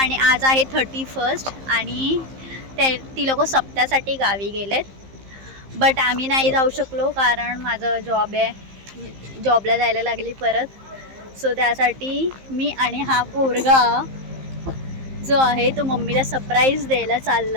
आज आहे 31 आणि ती लोक सप्त्यासाठी गावी गेलेत. बट आम्ही नाही जाऊ शकलो कारण माझं जॉब आहे, जॉबला जायला लागली परत. सो त्यासाठी मी आणि हा पोरगा जो आहे तो मम्मीला सरप्राईज द्यायला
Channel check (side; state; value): left; late; 15 ms